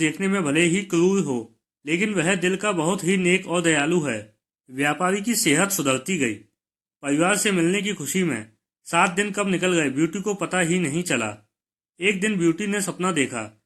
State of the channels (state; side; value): identical; both; correlation 1.00